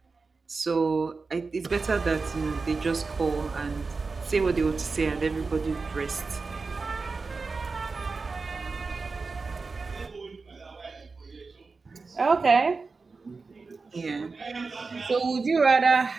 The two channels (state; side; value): quieter; left; 4.2 dB